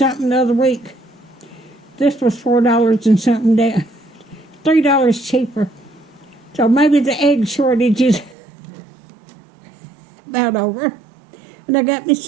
the other week. This was $4 and something down. $3 cheaper. So maybe the egg shortage is about over. And I got me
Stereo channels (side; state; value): left; drops out; at 8.3 s